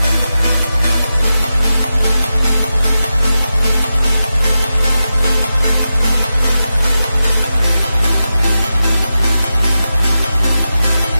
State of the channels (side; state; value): both; inverted; correlation -0.91